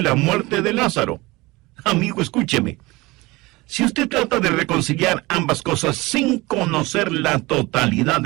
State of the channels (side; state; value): left; quieter; 22.0 dB